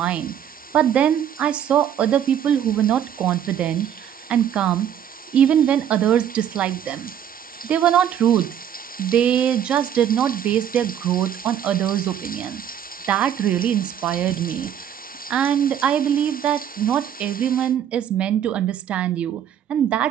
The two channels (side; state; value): left; quieter; 9.6 dB